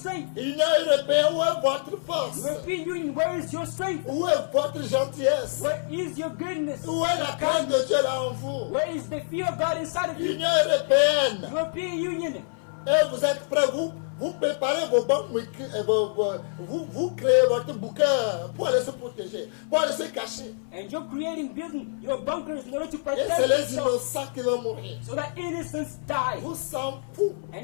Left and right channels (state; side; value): silent; right; 56 dB below the other